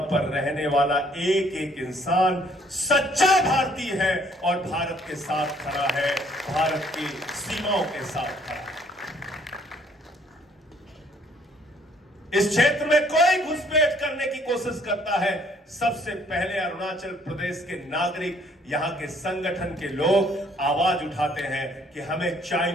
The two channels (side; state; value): both; normal; correlation 0.62